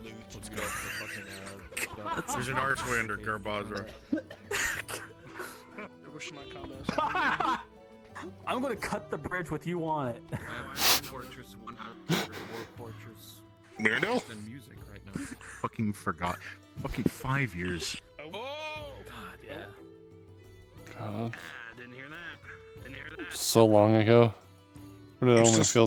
Let's go. Fucking, There's an Archwind or Garbazra. I wish my combos. I'm gonna cut the bridge with you on it. I have Fortress 100 War Fortress Mirandel? and music right now. Fucking forgot. Fucking 5 years. Oh, God, yeah. God, didn't hear that. Didn't hear that. so long ago. But it only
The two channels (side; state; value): both; identical; correlation 1.00